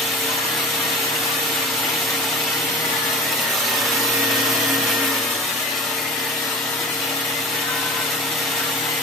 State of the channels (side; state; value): both; normal; correlation 0.38